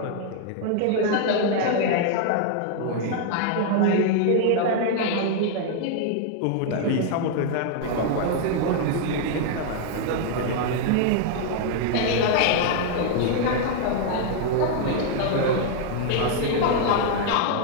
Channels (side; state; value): both; different; correlation 0.00